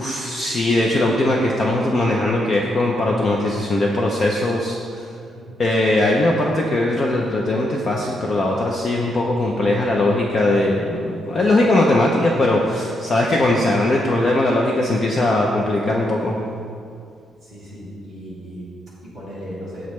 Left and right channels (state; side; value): normal; both; correlation 0.80